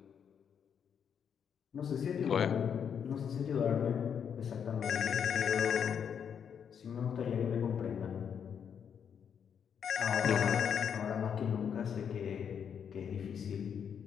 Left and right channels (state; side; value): quieter; right; 7.7 dB